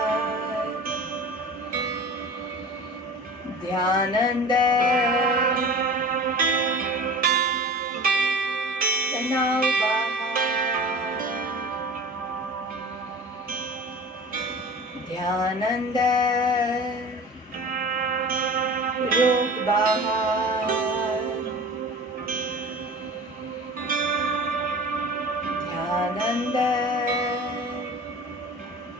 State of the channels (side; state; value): both; normal; correlation 0.38